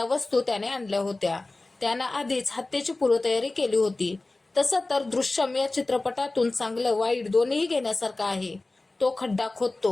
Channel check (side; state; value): right; quieter; 3.1 dB